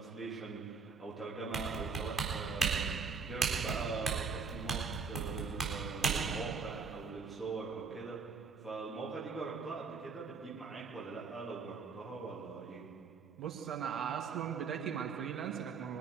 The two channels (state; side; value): quieter; left; 5.1 dB